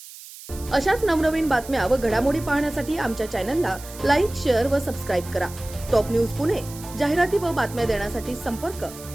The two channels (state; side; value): noise; right; hiss, 16 dB below the sound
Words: अशाच नवनवीन बातम्या व घडामोडी पाहण्यासाठी आमच्या चॅनलला लाईक, शेअर व सबस्क्राईब करा। टॉप न्यूज पुणे जाहिराती व बातम्या देण्यासाठी संपर्क